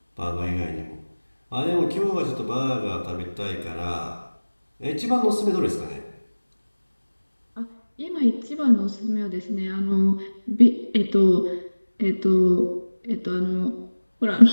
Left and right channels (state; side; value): inverted; both; correlation -1.00